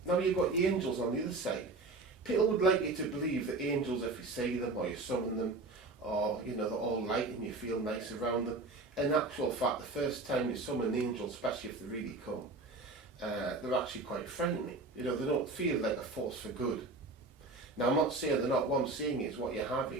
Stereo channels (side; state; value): left; quieter; 3.3 dB